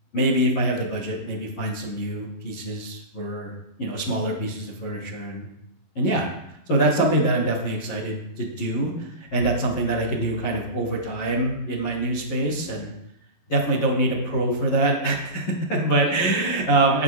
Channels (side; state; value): right; late; 12 ms